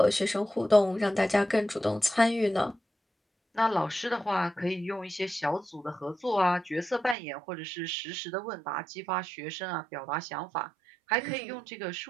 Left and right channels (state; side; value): drops out; left; at 7.2 s